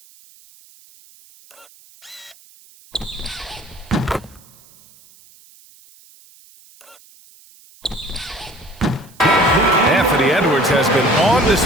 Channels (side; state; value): right; noise; hiss, 26 dB below the sound